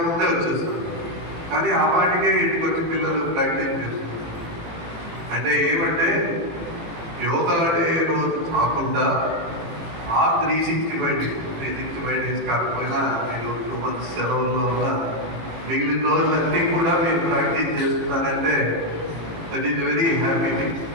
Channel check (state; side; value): late; left; 18 ms